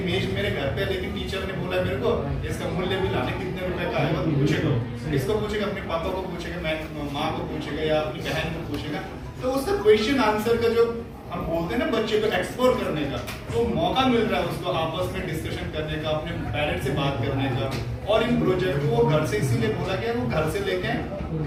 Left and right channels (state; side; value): identical; both; correlation 1.00